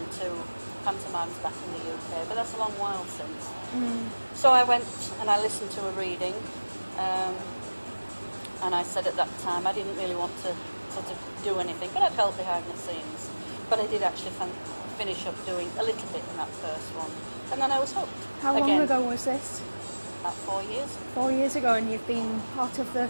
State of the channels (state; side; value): inverted; both; correlation -1.00